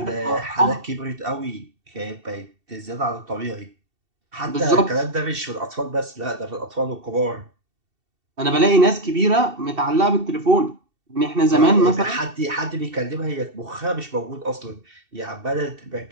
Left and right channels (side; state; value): left; late; 2.7 ms